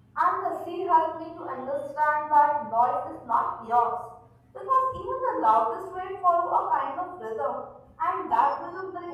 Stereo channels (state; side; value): identical; both; correlation 1.00